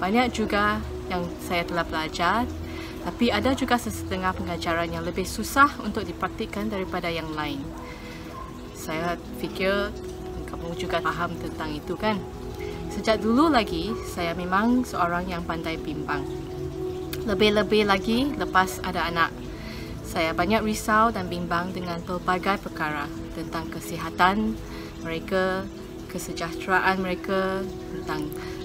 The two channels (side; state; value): both; identical; correlation 1.00